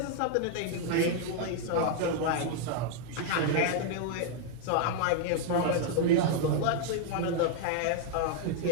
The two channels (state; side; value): different; both; correlation 0.00